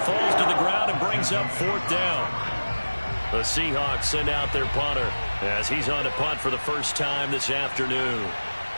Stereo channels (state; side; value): inverted; both; correlation -1.00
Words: falls to the ground and brings up 4th down. The Seahawks send out their punter as he's on to punt for the first time this afternoon.